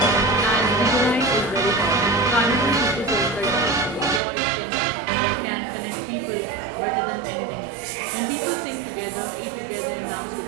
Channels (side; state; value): left; drops out; at 4.2 s